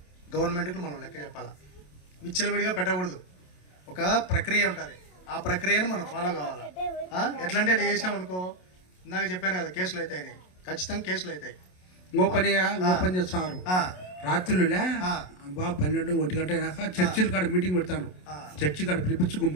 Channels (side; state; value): right; late; 27 ms